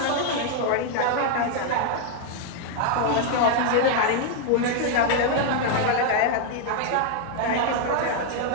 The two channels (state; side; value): different; both; correlation 0.00